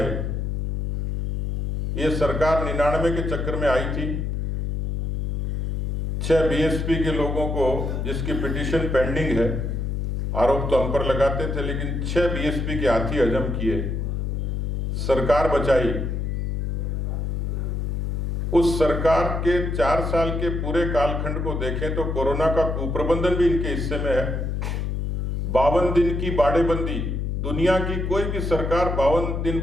ये सरकार 99 के चक्कर में आई थी। 6 बीएसपी के लोगों को, जिसकी पिटीशन पेंडिंग है, आरोप तो हम पर लगाते थे, लेकिन 6 बीएसपी के हाथी हजम किए, सरकार बचाई। उस सरकार के 4 साल के पूरे कालखंड को देखें तो कोरोना का कुप्रबंधन भी इनके हिस्से में है। 52 दिन की बाड़ेबंदी, दुनिया की कोई भी सरकार 52 दिन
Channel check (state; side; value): noise; left; hum, 1 dB below the sound